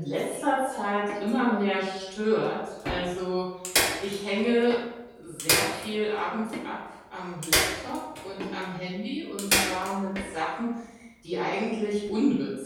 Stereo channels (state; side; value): identical; both; correlation 1.00